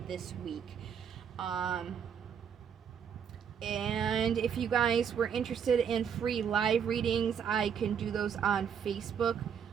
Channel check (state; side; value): quieter; left; 7.7 dB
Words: this week. And if you guys were interested in free live readings, I can do those on Facebook.